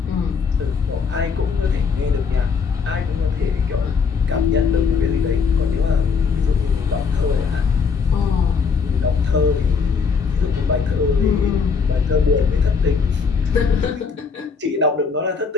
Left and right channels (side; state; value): right; quieter; 5.5 dB